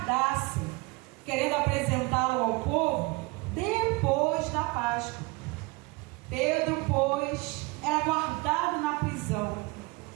querendo apresentá-lo ao povo depois da Páscoa. Pedro, pois, era guardado na prisão,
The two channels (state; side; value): quieter; left; 25.4 dB